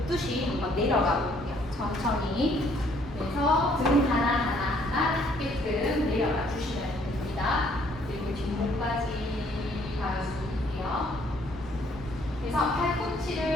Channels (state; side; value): normal; both; correlation 0.64